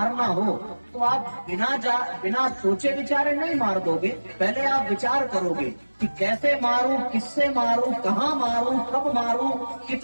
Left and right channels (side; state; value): both; inverted; correlation -1.00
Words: हो, तो आप बिना सोचे विचारे नहीं मार दोगे। पहले आप विचार करोगे कि कैसे मारूं, किससे मारूं, कहाँ मारूं, कब मारूं,